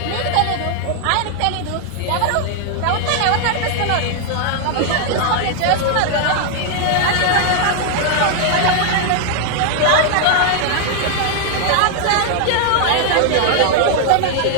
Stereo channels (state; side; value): different; both; correlation 0.00